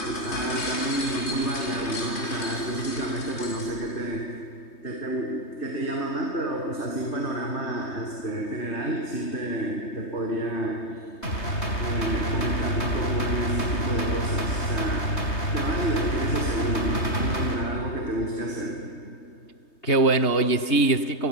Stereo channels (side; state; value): right; late; 3.2 ms